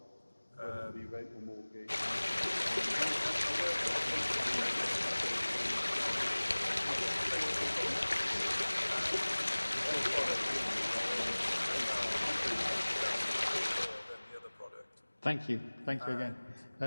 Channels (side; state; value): both; inverted; correlation -1.00